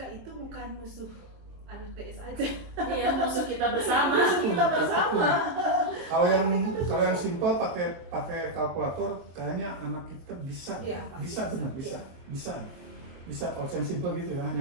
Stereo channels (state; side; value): late; left; 23 ms